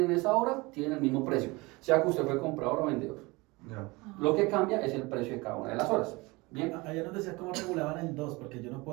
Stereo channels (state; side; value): quieter; left; 23.9 dB